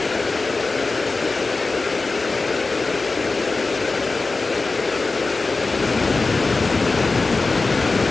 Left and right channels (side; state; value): right; quieter; 3.7 dB